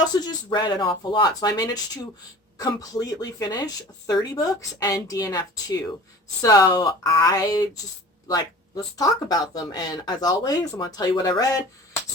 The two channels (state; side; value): normal; both; correlation 0.42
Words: just read an awful lot. So I managed to completely finish 30 books and DNF 2. So I just let's talk about them. And as always, I'm going to tell you what I read,